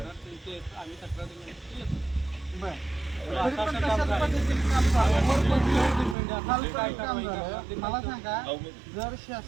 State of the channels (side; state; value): left; drops out; at 6.2 s